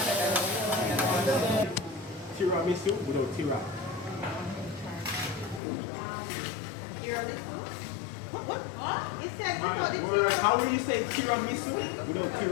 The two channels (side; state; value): right; drops out; at 5.6 s